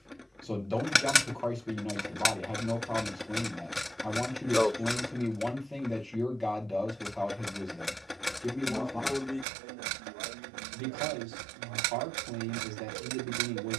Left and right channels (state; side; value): drops out; left; at 9.5 s